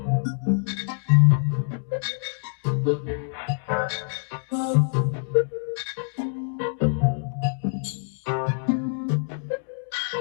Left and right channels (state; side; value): silent; right; digital silence